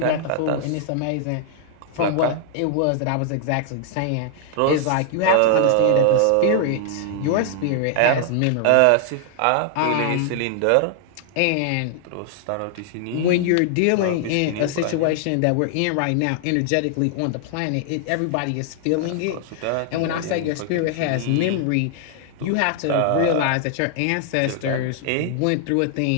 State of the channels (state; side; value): different; both; correlation 0.00